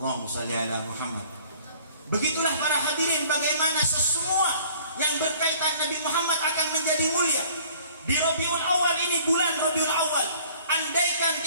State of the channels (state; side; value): inverted; both; correlation -0.54